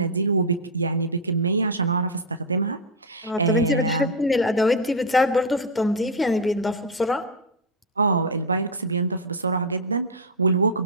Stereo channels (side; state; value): both; normal; correlation 0.02